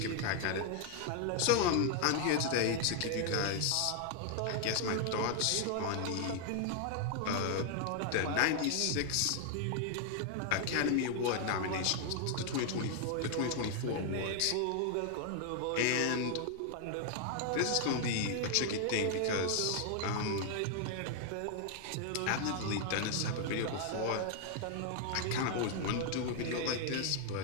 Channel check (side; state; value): both; different; correlation 0.00